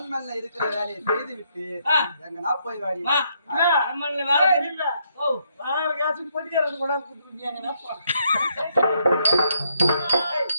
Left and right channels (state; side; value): inverted; both; correlation -0.75